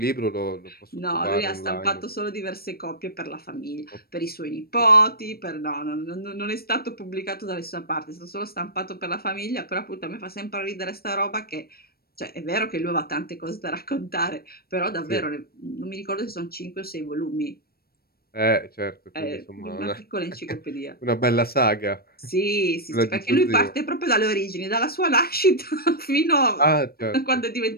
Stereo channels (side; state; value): right; late; 0.44 ms